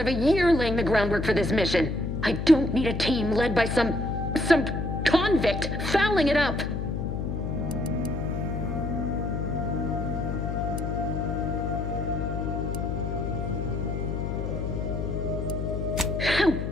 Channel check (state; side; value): noise; left; hum, 3 dB below the sound